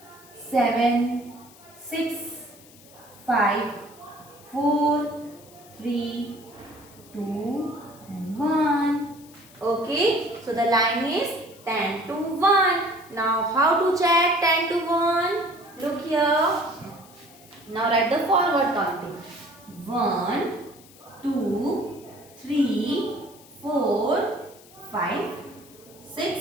7, 6, 5, 4, 3, 2, and 1. Okay, so the line is 10 to 1. Now, how to check 10 to 1? Look here. Now, write the forward counting. 1, 2, 3, 4, 5,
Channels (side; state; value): left; noise; hiss, 23 dB below the sound